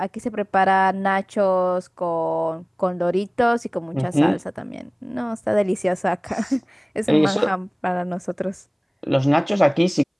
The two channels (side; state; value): both; identical; correlation 1.00